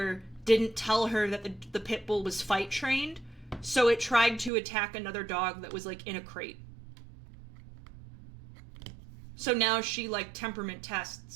didn't tell her that the pit bull was fight trained, so it tried to attack another dog that was like in a crate. So now she, like, temperament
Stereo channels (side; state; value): left; drops out; at 4.5 s